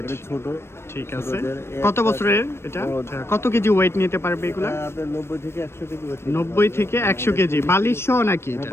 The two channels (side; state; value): right; late; 0.12 ms